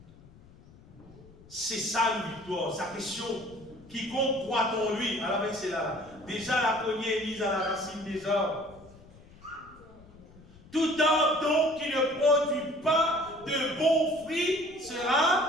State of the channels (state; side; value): noise; left; rumble, 23 dB below the sound